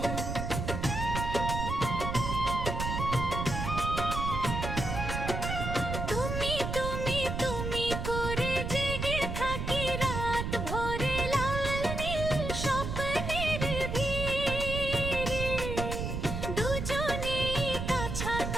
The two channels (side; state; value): right; noise; rumble, 3 dB below the sound